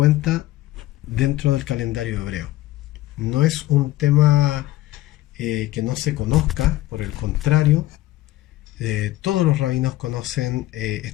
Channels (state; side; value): quieter; right; 16.3 dB